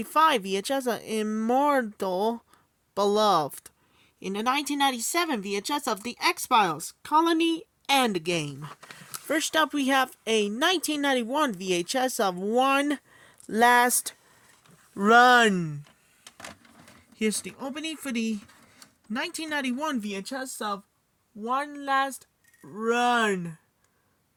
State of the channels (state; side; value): identical; both; correlation 1.00